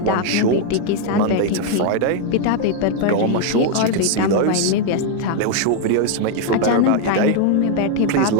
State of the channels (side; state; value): both; different; correlation 0.00